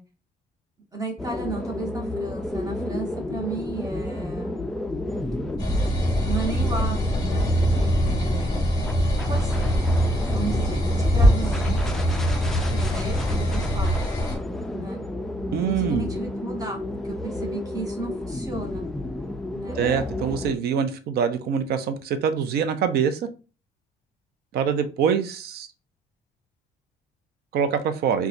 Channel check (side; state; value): both; normal; correlation 0.63